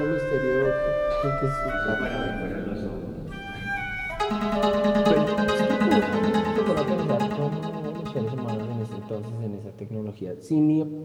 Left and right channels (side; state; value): both; identical; correlation 1.00